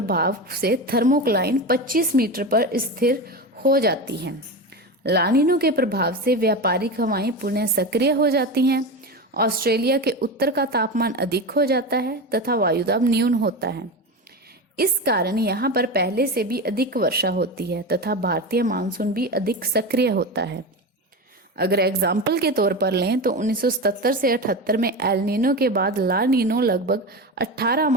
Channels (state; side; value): normal; both; correlation 0.22